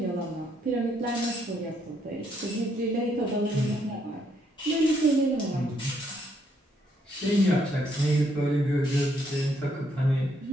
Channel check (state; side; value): normal; both; correlation 0.73